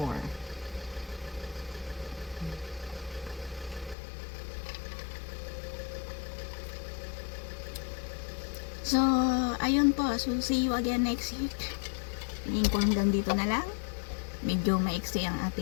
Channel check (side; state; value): right; drops out; at 4.0 s